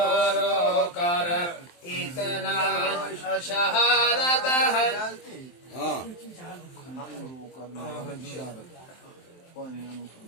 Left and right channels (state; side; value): late; right; 23 ms